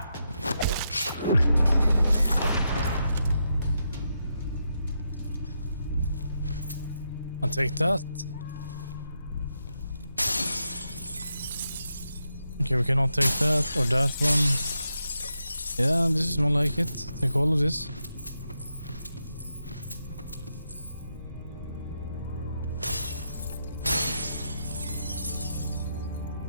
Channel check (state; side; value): inverted; both; correlation -0.84